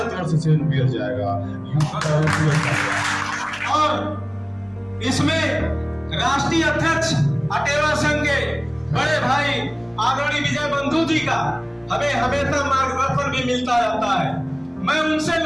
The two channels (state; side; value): identical; both; correlation 1.00